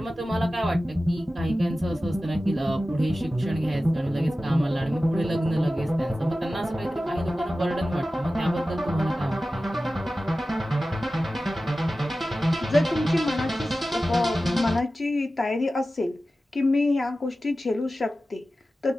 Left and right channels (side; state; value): both; normal; correlation 0.95